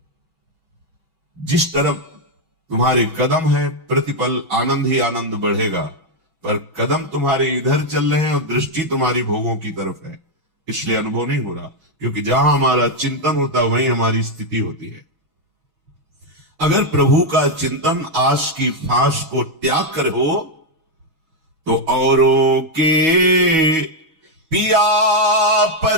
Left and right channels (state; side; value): late; left; 6.2 ms